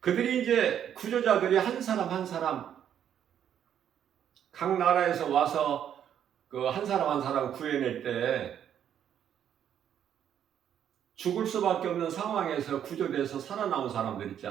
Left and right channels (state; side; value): quieter; left; 9.5 dB